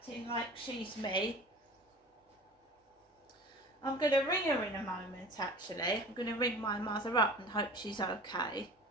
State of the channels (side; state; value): both; normal; correlation 0.40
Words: like she's me. I'm going to ring her in a moment, actually. I'm going to ring my mother up and hope she's okay.